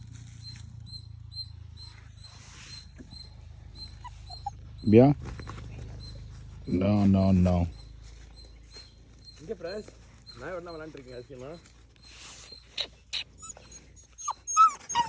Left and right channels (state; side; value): identical; both; correlation 1.00